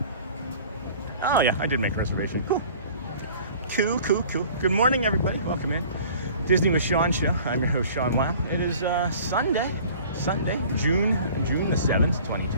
Oh yeah, I did make a reservation. Cool. Cool. Good morning, everybody. Welcome in. Disney with Sean show. I'm your host, Sean Weil. It is Sunday, June the 7th,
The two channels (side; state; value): both; inverted; correlation -0.47